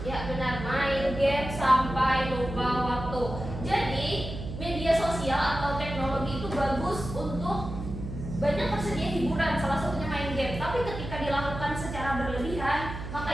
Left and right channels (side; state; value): right; noise; hum, 8 dB below the sound